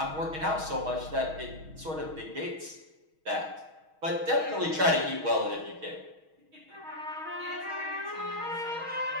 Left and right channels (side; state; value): left; late; 6.3 ms